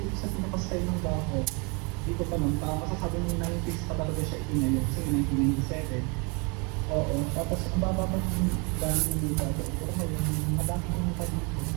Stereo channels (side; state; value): left; quieter; 31.4 dB